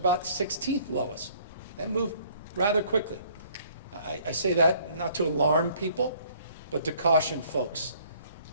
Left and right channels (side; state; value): both; inverted; correlation -0.59